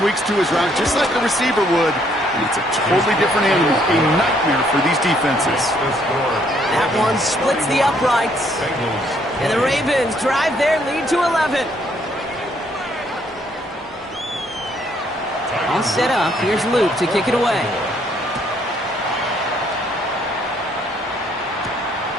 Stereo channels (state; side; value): normal; both; correlation 0.68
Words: to his route just like a receiver would, and it's a totally different animal, a nightmare for these defenses. That one splits the uprights, and the Ravens drive their lead to 11. All set up. Here's Luke to kick it away.